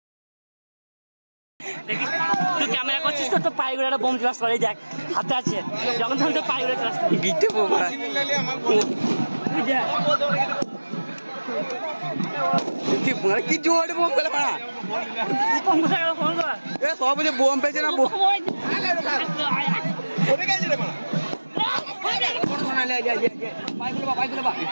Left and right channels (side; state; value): both; inverted; correlation -1.00